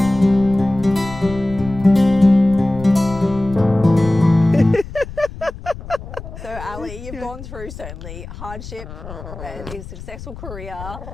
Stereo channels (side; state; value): left; noise; rumble, 13 dB below the sound